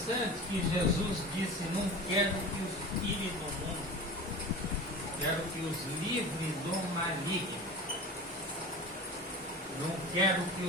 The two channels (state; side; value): normal; both; correlation 0.33